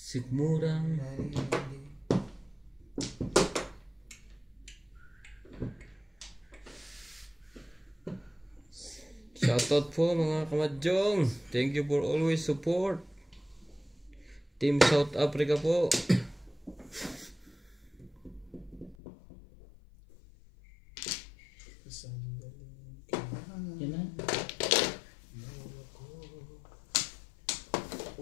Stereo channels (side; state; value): right; drops out; at 18.9 s